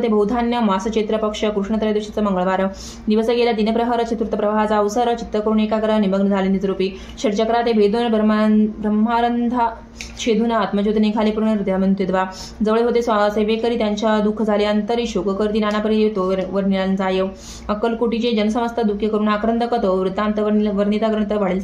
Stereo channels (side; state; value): both; identical; correlation 1.00